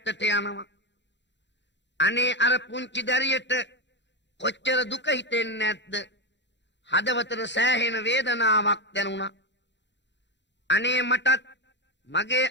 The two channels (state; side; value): late; right; 0.52 ms